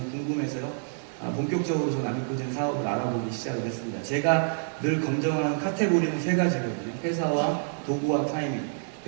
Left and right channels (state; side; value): silent; left; digital silence